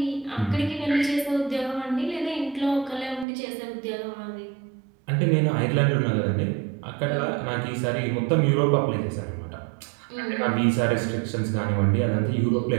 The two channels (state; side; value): drops out; left; at 3.2 s